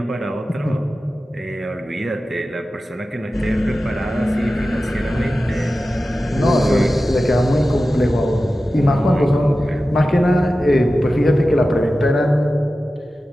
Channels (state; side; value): normal; both; correlation 0.94